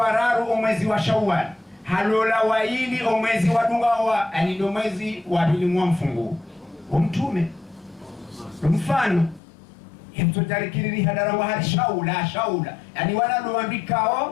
mwezi wa Shawwal, halola waili mwezi wa Dungawa, ani ndio mwezi wa pili mwa mfungu Mtume. Mfano hemtotarikiri hadara wa hali shaula yani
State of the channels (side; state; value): right; drops out; at 9.4 s